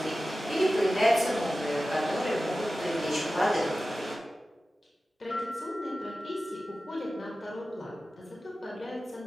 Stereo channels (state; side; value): normal; both; correlation 0.95